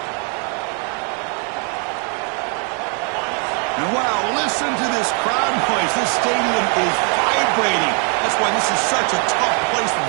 And wow, listen to this crowd noise. This stadium is vibrating. That's why this is such a tough place for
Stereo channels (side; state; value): left; quieter; 38.7 dB